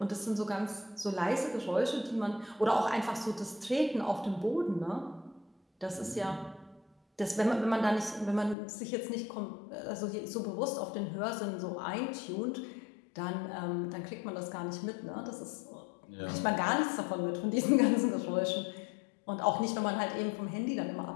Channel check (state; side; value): drops out; right; at 8.6 s